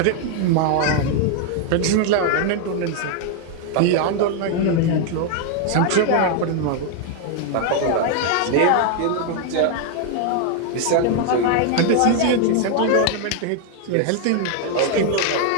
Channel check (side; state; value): both; different; correlation 0.00